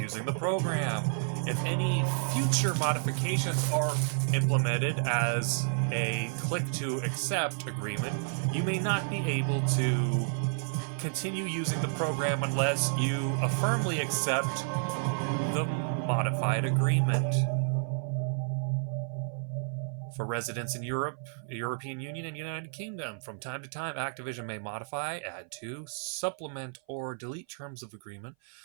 the program. If any future modifications are implemented as a click to accept agreement, you may not be able to continue using the program unless you firmly accept the modified agreement. For residents in Europe, the European Union, and United Kingdom, from time to time, Activision may modify, add to, supplement, or delete terms of agreement,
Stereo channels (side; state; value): left; silent; 56 dB below the other